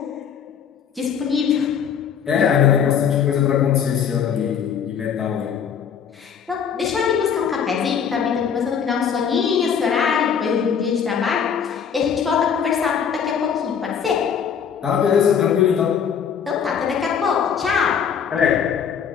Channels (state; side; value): quieter; right; 7.5 dB